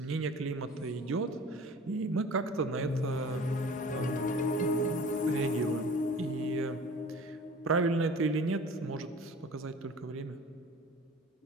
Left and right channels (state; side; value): normal; both; correlation 0.43